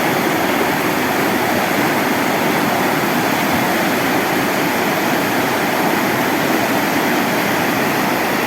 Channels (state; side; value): identical; both; correlation 1.00